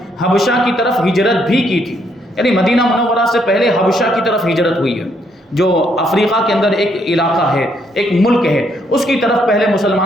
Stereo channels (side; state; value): both; normal; correlation 0.72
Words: حبشہ کی طرف ہجرت بھی کی تھی، یعنی مدینہ منورہ سے پہلے حبشہ کی طرف ہجرت ہوئی ہے، جو افریقہ کے اندر ایک علاقہ ہے، ایک ملک ہے، اس کی طرف پہلے